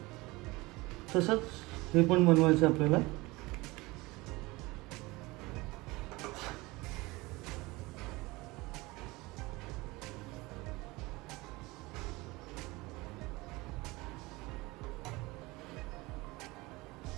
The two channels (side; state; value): left; quieter; 22.2 dB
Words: तसंच हे पण बनवायचं आपल्याला.